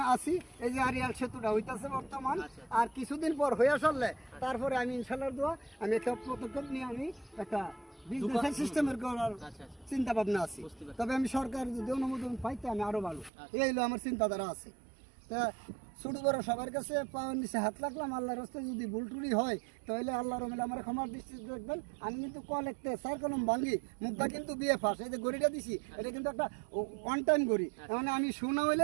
আছি। এই যে আরিয়াল সেতুটা হইতাছে বর্তমান, আর কিছুদিন পর হয়ে আসলে তারপরে আমি ইনশাল্লাহ দোয়া আমি একটা পদক্ষেপ নিয়ে আমি একটা বিজনেস সিস্টেমের করার চিন্তা ভাবনা আছে। তবে আমি সরকার যদি অনুমোদন পাইতে আমি আরো ভালো, এই হলো আমার চিন্তাধারা আছে। তা ছোট বড় সবার কাছে পাওয়ার নিচে হাত রাখলাম। আল্লাহর রাস্তায় যদি ভুল টুরি হয় তাহলে আল্লাহর রহমতে আমার ক্ষমার দৃষ্টি দেখবেন। আমি কিন্তু কল একটা স্যার কলম ভাঙি, মুখটা কিন্তু বিয়ে ফাঁস। এই যে গড়িটা দিছি, এটা কিন্তু একটা ওয়ান টাইম গড়ি, মানে আমি শোনা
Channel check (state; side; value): drops out; left; at 13.3 s